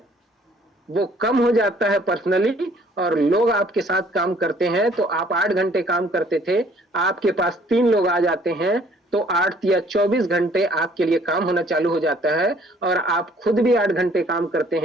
वो कम हो जाता है पर्सनली, और लोग आपके साथ काम करते हैं। तो आप 8 घंटे काम करते थे, आपके पास 3 लोग आ जाते हैं, तो 8 या 24 घंटे आपके लिए काम होना चालू हो जाता है। और आप खुद भी 8 घंटे काम करते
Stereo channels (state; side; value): normal; both; correlation 0.59